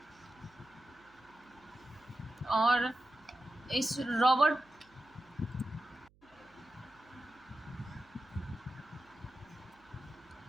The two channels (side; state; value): right; noise; hum, 30 dB below the sound